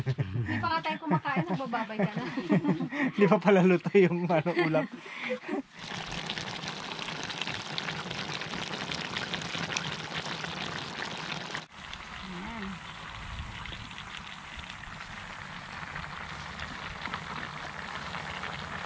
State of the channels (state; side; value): identical; both; correlation 1.00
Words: Hindi pa nga tayo kumakain, nagbababay ka na. Hindi pa pala luto yung ulam.